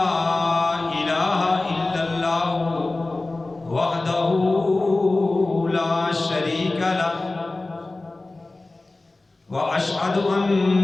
إله إلا الله وحده لا شريك له وأشهد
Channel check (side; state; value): right; quieter; 3.1 dB